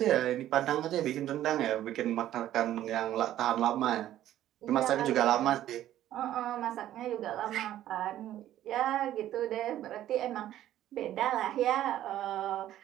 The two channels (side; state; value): left; quieter; 12.7 dB